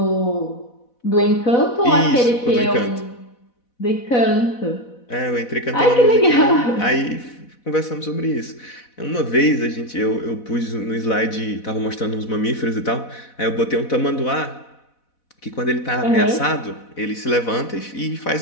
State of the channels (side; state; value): right; late; 4.1 ms